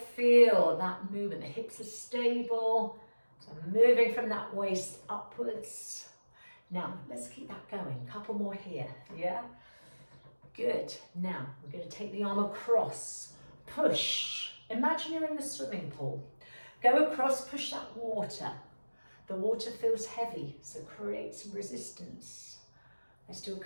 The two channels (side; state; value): both; inverted; correlation -1.00